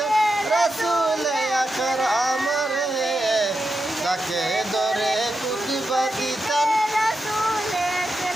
রাসূল আকরাম রে, যাকে ধরে কুদবা দিতেন।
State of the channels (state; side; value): normal; both; correlation 0.88